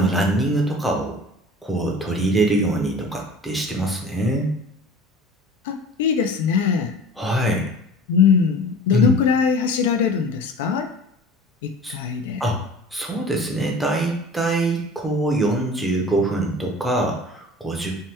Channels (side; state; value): both; normal; correlation 0.42